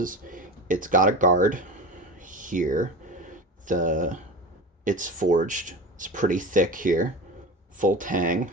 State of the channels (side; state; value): both; normal; correlation 0.29